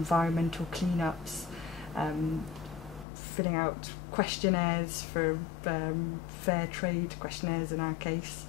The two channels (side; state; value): right; drops out; at 3.1 s